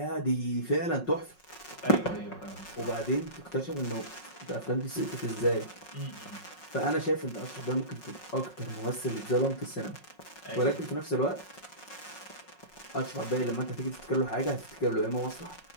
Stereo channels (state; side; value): late; right; 5.5 ms